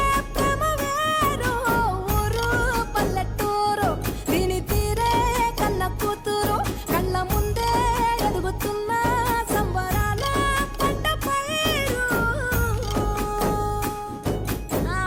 ప్రేమ వేరు ఊరు పల్లెటూరు దీని తీరే కన్న కూతురు కళ్ళ ముందే ఎదుగుతున్న సంబరాల పంట పైరు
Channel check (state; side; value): identical; both; correlation 1.00